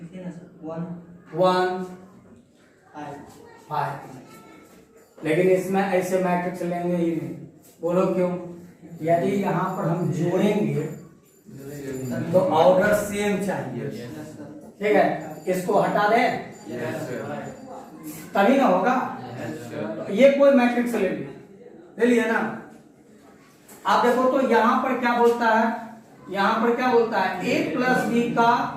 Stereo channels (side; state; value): both; identical; correlation 1.00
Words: 1 5। लेकिन इसमें ऐसे मैट्रिक्स लेंगे ही नहीं, बोलो क्यों? यदि यहाँ पर हम जोड़ेंगे तो ऑर्डर सेम चाहिए, ठीक है, इसको हटा दें तभी ना होगा। ये कोई मैट्रिक्स ले लिया ना। आप देखो तो यहाँ पर क्या बोलता है, यहाँ पर क्या बोलता है, ए प्लस बी का